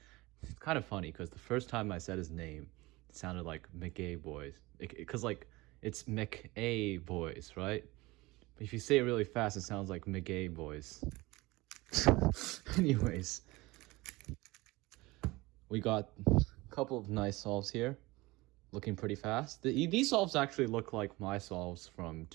It's kind of funny because the first time I said his name, it sounded like mcakaboys. Because like, it's mcakaboys, right? But if you say it really fast, it sounds like mcakaboys. Anyways, we got a couple of nice solves here. Looking pretty fast. These solves actually look like my solves from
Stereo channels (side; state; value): left; quieter; 21.4 dB